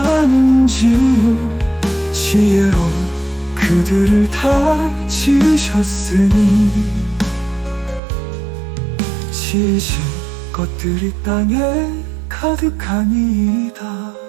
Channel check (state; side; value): drops out; left; at 8.0 s